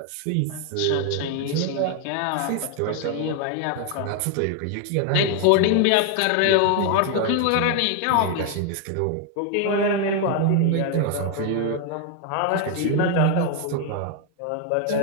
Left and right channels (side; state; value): both; different; correlation 0.01